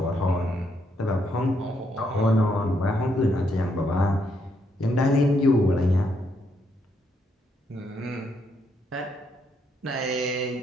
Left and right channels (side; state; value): both; normal; correlation 0.75